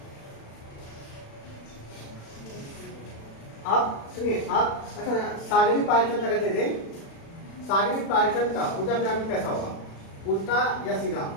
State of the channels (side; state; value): right; late; 36 ms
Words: आप सुनिए, आप अच्छा सागरी पायचन अगर दे दें, सागरी पायचन का ऊर्जा पिरामिड कैसा होगा? उल्टा या सीधा?